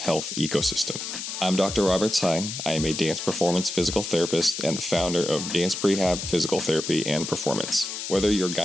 ecosystem. I'm Dr. Robert Tsai. I am a dance performance physical therapist and the founder of Dance PREHAB Physical Therapy and Performance. Whether you're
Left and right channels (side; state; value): left; noise; hiss, 6 dB below the sound